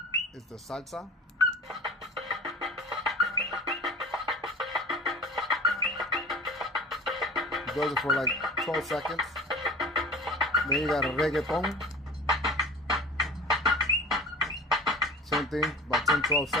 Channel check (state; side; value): normal; both; correlation 0.40